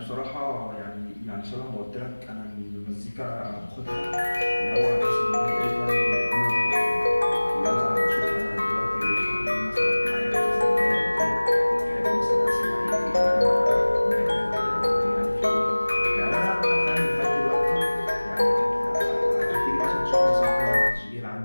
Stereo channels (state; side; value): inverted; both; correlation -1.00